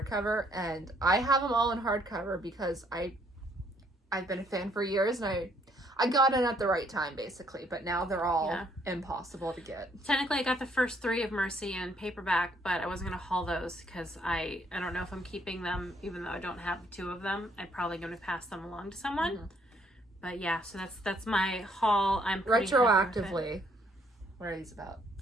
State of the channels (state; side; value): normal; both; correlation 0.67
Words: And I have them all in hardcover because I've been a fan for years, and I got it at the right time, basically, but now they're all impossible to get. Technically, I got the first 3 of Mercy in paperback, but I wasn't going to haul those because I don't know if I'm keeping them, even though I don't have 2 of them. I'm probably going to pass them along to someone. Mm-hmm. But yeah, so that's my haul. I'm pretty retroactively. What are these about?